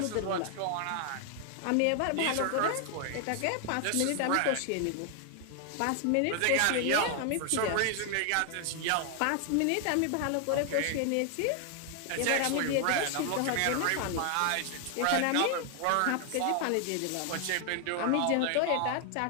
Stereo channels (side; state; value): both; different; correlation 0.00